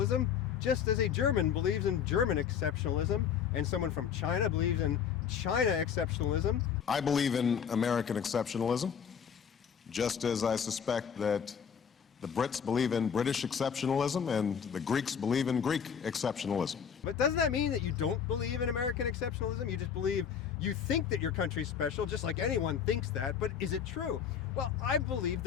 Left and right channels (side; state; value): right; quieter; 7.6 dB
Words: just as a German believes in German exceptionalism, and someone from China believes in China exceptionalism. I believe in American exceptionalism, just as I suspect that the Brits believe in British exceptionalism and the Greeks believe in Greek exceptionalism. But doesn't that mean that you don't believe in American exceptionalism? You just believe, you think that your country's special, just like anyone thinks that, but is it true? Well, I believe